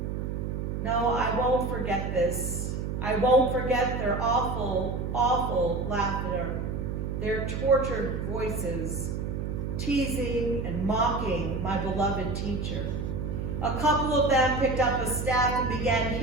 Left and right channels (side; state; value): right; noise; hum, 3 dB below the sound